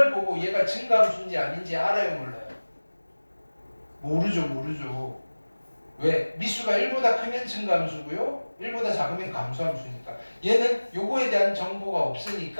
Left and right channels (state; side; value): inverted; both; correlation -1.00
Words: 보고 얘가 증가함수인지 아닌지 알아요, 몰라요? 모르죠. 왜? 미수가 1보다 크면 증가함수고요, 1보다 작으면 감소함수니까. 얘는 요거에 대한 정보가